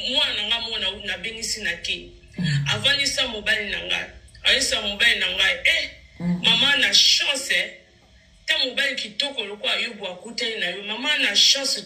nga mwana na bengisi na ki avant ça mobile na nga ayesa mobile na nga mama na chance ta mobile kitoko lokwa yobo akute na yo mama na chance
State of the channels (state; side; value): identical; both; correlation 1.00